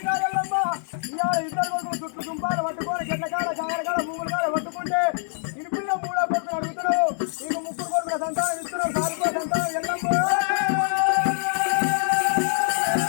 పట్టుకొని చెట్లకాడ చాగలకాడ భూముల కాడ పట్టుకుంటే ఇనిపిల్ల 3 కొడుకులు అడుగుతున్నావు నీకు 3 కొడుకుల సంతానం ఇస్తున్నావు సాగుకో సంతానం ఎల్లమ్మ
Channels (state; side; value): silent; right; digital silence